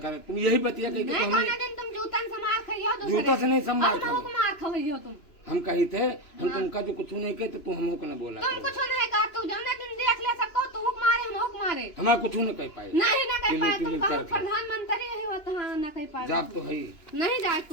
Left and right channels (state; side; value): late; right; 2.9 ms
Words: करें, तुम यही बतिया कही नहीं कौन दिन तुम जूतन से मार खाइयो दूसरे। जूता से नहीं संभाल अब हमको मार खाइयो तुम। हम कही थे हम तुमका जो कुछ नहीं कहे तो तू हमको न बोला तुम कुछ नहीं कहा, तू जाने दिन देख ले सबको, तू हुक मारे हम हुक मारे। हमारा कुछ न कह पाए। नहीं ना कह पाए, तुम टिली कहो करके। प्रधानमंत्री है वो तो हाँ ना कह पाए। जाप तो है नहीं जाए